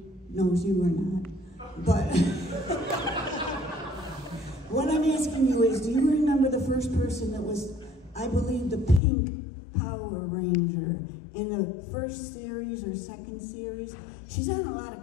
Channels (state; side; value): drops out; right; at 9.0 s